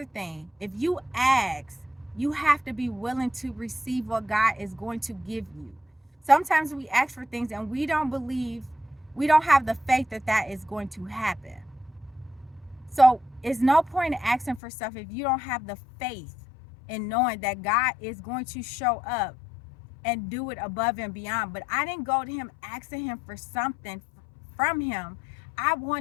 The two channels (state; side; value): drops out; right; at 14.6 s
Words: thing. If you ask, you have to be willing to receive what God is going to give you. Sometimes we ask for things and we don't have the faith that is going to happen. So it's no point in asking for stuff if you don't have the faith in knowing that God is going to show up and do it above and beyond. But I didn't go to him asking him for something from him. I